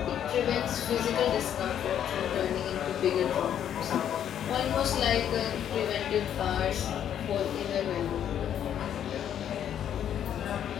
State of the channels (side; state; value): right; quieter; 9.8 dB